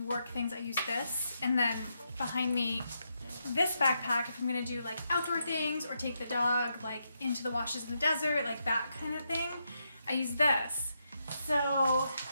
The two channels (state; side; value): inverted; both; correlation -0.82